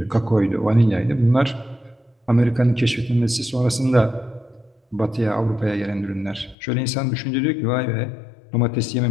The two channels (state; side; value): drops out; right; at 6.6 s